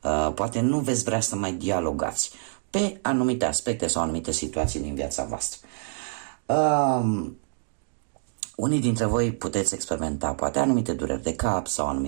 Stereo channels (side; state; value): left; silent; digital silence